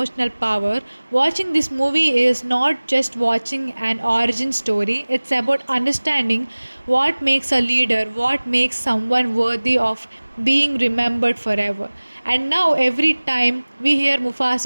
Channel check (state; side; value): inverted; both; correlation -1.00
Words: power. Watching this movie is not just watching an origin story, it's about understanding what makes a leader, what makes someone worthy of being remembered forever. And now, every time we hear